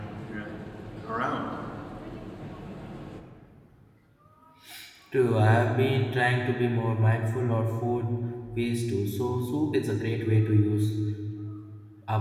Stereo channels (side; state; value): both; identical; correlation 1.00